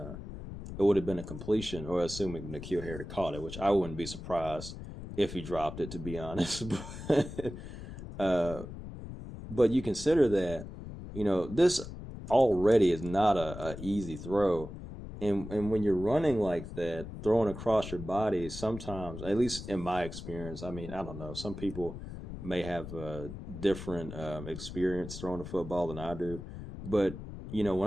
completion, or assuming N'Keal Harry caught it, which I wouldn't be surprised if he dropped it, to be honest. But you consider that, this already is not a easy throw. And when you're running like that, throwing across your body, sometimes, at least in my experience, I mean, I don't know, some people may have a different experience throwing a football than I do. But,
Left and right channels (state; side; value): noise; left; rumble, 10 dB below the sound